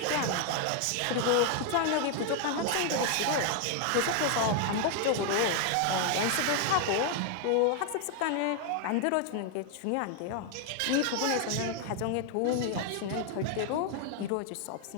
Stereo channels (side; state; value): both; different; correlation 0.00